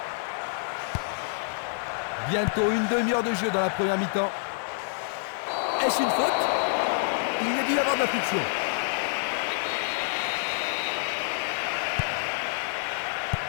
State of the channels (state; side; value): silent; right; 60 dB below the other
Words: Bientôt une demi-heure de jeu dans la première mi-temps. Est-ce une faute? Il y a dû y avoir de la friction.